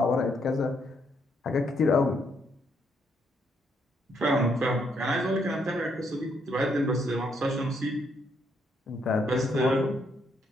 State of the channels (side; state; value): both; normal; correlation 0.74